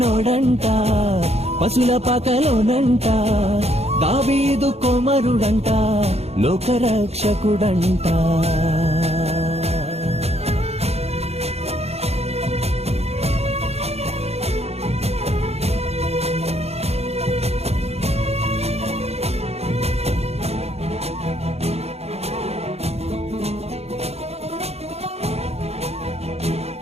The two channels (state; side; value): late; left; 0.30 ms